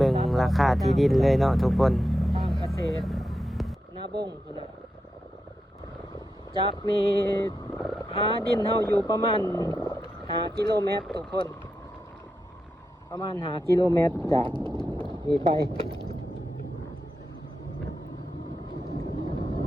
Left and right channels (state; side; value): normal; both; correlation 0.88